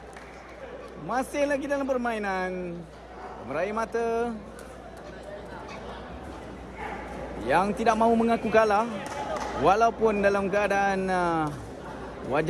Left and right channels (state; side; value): identical; both; correlation 1.00